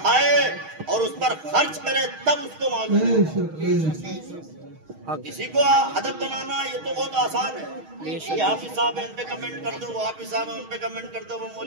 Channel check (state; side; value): late; left; 6.4 ms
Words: اور اس پر خرچ کرے، تب اس کو معلوم. کسی کو ادب بنانا یہ تو بہت آسان ہے، یہ حافظ صاحب ہیں ان پہ کمنٹ کر دو، وہ حافظ صاحب ہیں ان پہ کمنٹ کر دو، وہ